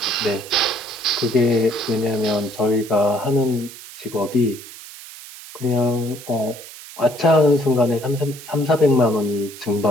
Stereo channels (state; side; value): noise; right; hiss, 16 dB below the sound